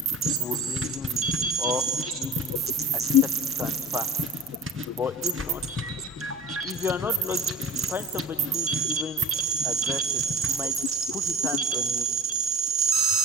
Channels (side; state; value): both; normal; correlation 0.39